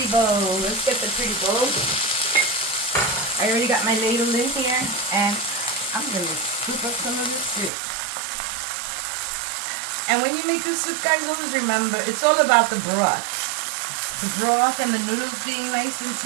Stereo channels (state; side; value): drops out; left; at 7.7 s